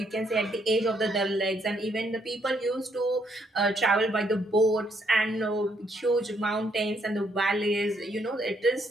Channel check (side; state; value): both; normal; correlation 0.72